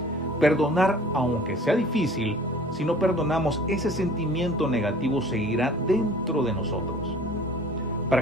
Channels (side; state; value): both; normal; correlation 0.47